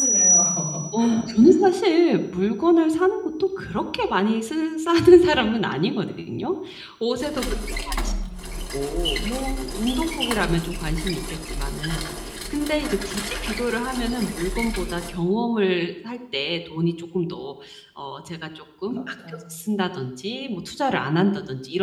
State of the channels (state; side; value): identical; both; correlation 1.00